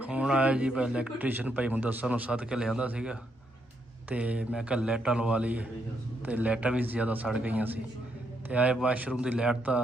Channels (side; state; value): both; normal; correlation 0.77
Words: ਹੁਣ ਆਇਆ ਜੀ ਇਲੈਕਟ੍ਰੀਸ਼ੀਅਨ ਭਾਈ ਮੁਦੱਸਰ ਨੂੰ ਸੱਦ ਕੇ ਲਿਆਂਦਾ ਸੀਗਾ ਤੇ ਮੈਂ ਕਿਹਾ ਲਾਈਟਾਂ ਲਵਾ ਲਈਏ ਤੇ ਲਾਈਟਾਂ ਵੀ ਜ਼ਿਆਦਾ ਸੜ ਗਈਆਂ ਸੀ ਤੇ ਆਏ ਵਾਸ਼ਰੂਮ ਦੀ ਲਾਈਟ